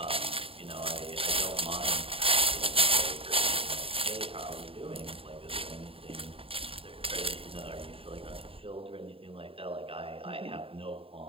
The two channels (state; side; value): late; left; 0.27 ms